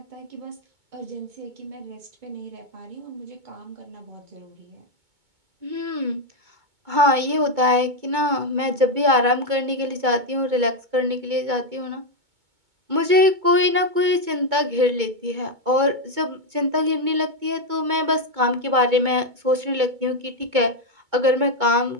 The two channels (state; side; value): late; left; 2.2 ms